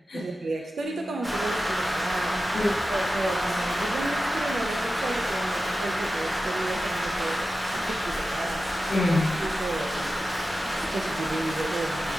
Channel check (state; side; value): normal; both; correlation 0.93